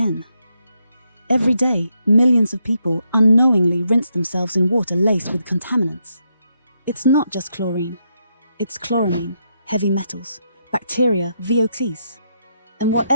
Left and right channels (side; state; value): both; inverted; correlation -0.79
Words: Every day, millions of people unknowingly rinse themselves in water laced with contaminants. It's not just chlorine. It's chloramine, heavy metals, bacteria, VOCs, and